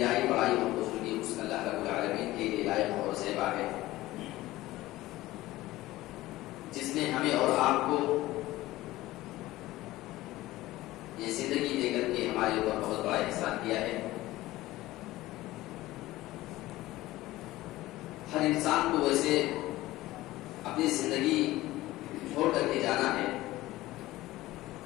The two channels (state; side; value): quieter; right; 17.2 dB